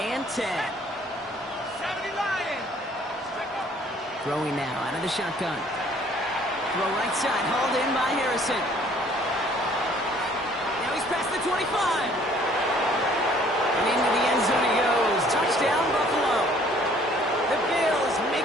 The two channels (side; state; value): both; normal; correlation 0.58